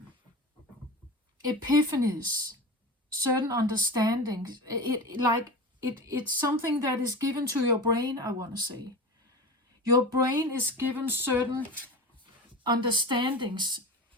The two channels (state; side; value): normal; both; correlation 0.29